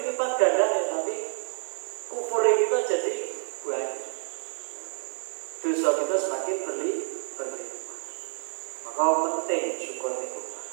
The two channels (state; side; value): silent; left; 59 dB below the other